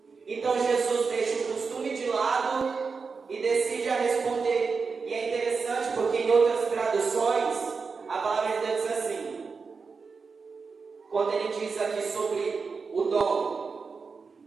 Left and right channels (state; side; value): quieter; left; 4.9 dB